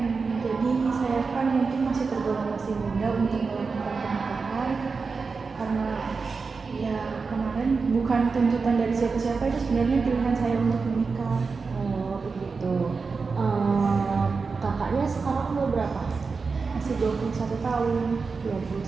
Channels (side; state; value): left; quieter; 4.7 dB